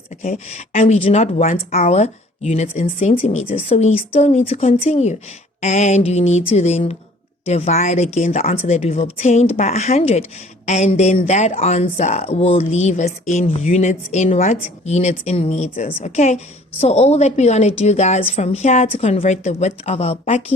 Okay, and we do not want our units in centimeters, so we still need to continue. And you need to then divide again the answer that we've obtained by 100. And then that answer will leave us in units in what? Units in meters. Okay. So all that we're going to do, guys, from here to convert the width of our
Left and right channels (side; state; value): both; normal; correlation 0.54